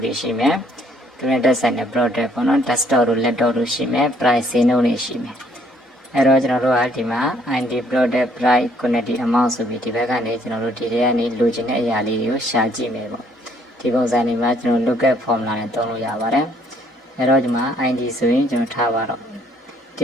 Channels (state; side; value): normal; both; correlation 0.65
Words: တွေရှိမယ်သူနဲ့တက်ဆိုင်တဲ့ product ပေါ့နော် desktop တို့ laptop တို့ရှိမယ် price ဈေးနှုန်းတွေရှိမယ်အဲ့တော့ကျွန်တော်တို့ကဒီမှာ ID product price quantity amount ဆိုပြီးဒီဘက်ကနေကျွန်တော်တို့ဒီထဲကနေလိုချင်တဲ့အရာလေးတွေကိုရှာကြည့်မယ်ပေါ့ဒီပုံစံတွေမှာကျွန်တော် lookup formula နဲ့သုံးလို့ရပါတယ်အဲ့တော့ဒီမှာ ID ဆိုရင်ကျွန်တော်ထားပါတော့